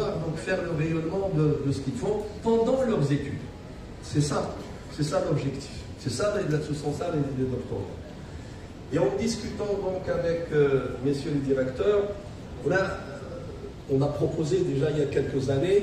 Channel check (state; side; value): identical; both; correlation 1.00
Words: donc faire le rayonnement de ce qu'ils font pendant leurs études. C'est ça l'objectif. Ce sont ça les doctorats. Et en discutant donc avec messieurs les directeurs, on a proposé déjà il y a quelques